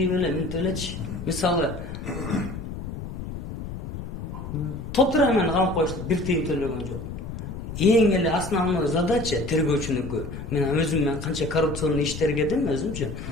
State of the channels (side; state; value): left; noise; rumble, 8 dB below the sound